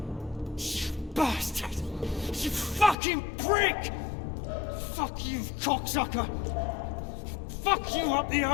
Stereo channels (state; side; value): drops out; right; at 3.0 s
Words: Bastard! You fucking prick! Fuck you, cocksucker! Fuck you up the